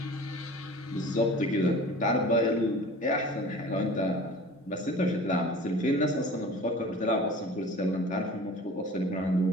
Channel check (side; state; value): both; normal; correlation 0.41